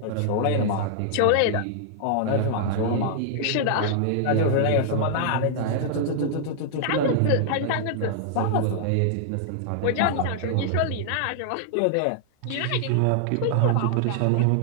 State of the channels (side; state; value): both; different; correlation -0.01